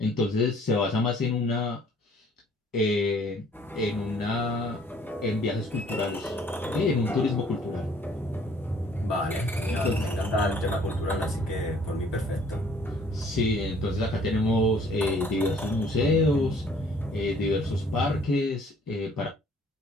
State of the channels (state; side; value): normal; both; correlation 0.58